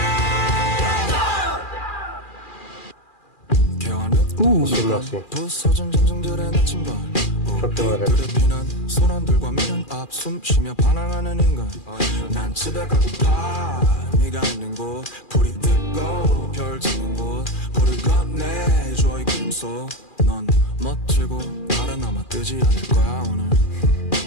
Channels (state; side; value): late; right; 2.4 ms